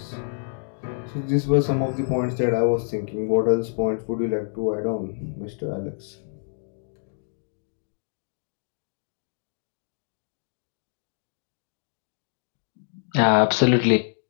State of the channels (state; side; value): silent; right; digital silence